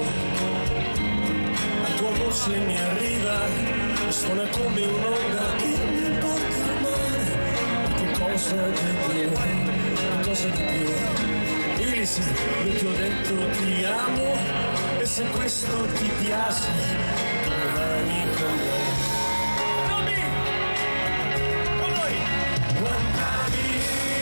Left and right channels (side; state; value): both; inverted; correlation -1.00